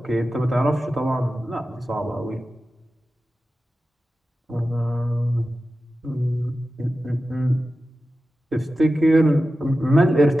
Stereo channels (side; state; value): both; normal; correlation 0.94